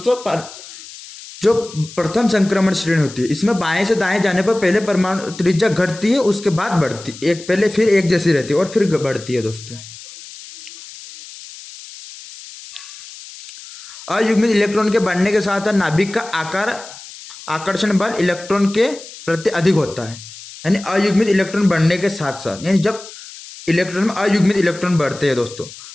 जो प्रथम संक्रमण श्रेणी होती है इसमें बाएं से दाएं जाने पर पहले परमाणु त्रिज्या घटती है, उसके बाद बढ़ती एक पहले फिर एक जैसी रहती है और फिर बढ़ती है दोस्तों। अयुग्मित इलेक्ट्रॉन के बढ़ने के साथ नाभिक का आकर्षण बल इलेक्ट्रॉन के प्रति अधिक होता है। यानी अयुग्मित इलेक्ट्रॉन बढ़ने के साथ साथ, यानी जब इलेक्ट्रॉन में अयुग्मित इलेक्ट्रॉन बढ़ते हैं दोस्तों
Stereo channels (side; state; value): left; noise; hiss, 16 dB below the sound